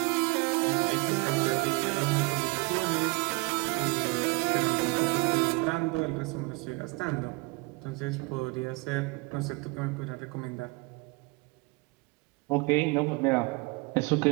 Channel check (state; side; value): quieter; left; 27.1 dB